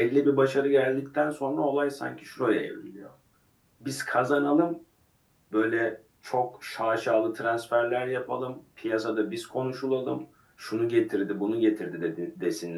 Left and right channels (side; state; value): both; identical; correlation 1.00